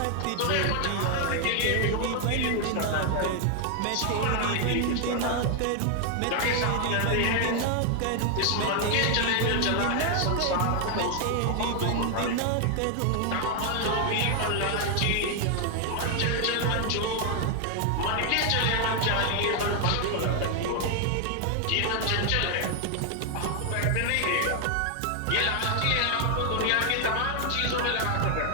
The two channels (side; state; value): both; different; correlation 0.00